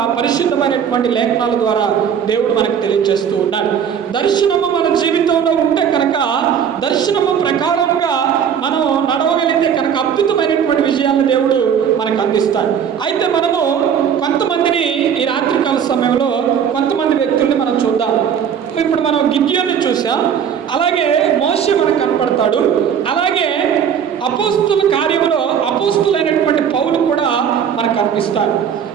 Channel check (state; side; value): quieter; left; 8.0 dB